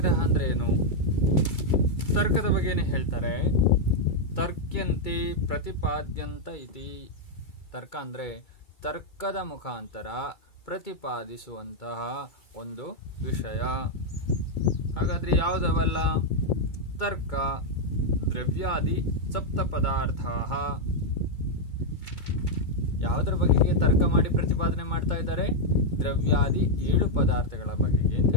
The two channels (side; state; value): right; late; 2.3 ms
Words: ಅಂದ್ರೆ ಏನು? ತರ್ಕದ ಬಗ್ಗೆನೇ ಹೇಳ್ತಾರೆ. ತರ್ಕ್ಯಂತೆ ಪ್ರತಿಪಾದ್ಯಂತ ಇತಿ. ತರ್ಕ ಅಂದ್ರೆ ತರ್ಕದ ಮುಖಾಂತರ ಪ್ರತಿಪಾದಿಸುವಂತಹ ಒಂದು ವಿಷಯ. ಹಾಗಾದ್ರೆ ಯಾವುದವಲ್ಲ? ತರ್ಕ, ದ್ರವ್ಯಾದಿ ಸಪ್ತ ಪದಾರ್ಥ. ಯಾವುದರ ಬಗೆಗೆ ತರ್ಕ ಮಾಡಿ ಪ್ರತಿಪಾದನೆ ಮಾಡ್ತಾ ಇದ್ದಾರೆ? ದ್ರವ್ಯಾದಿ 7 ಪದಾರ್ಥಗಳ ಬಗೆಗೆ ಅಂತ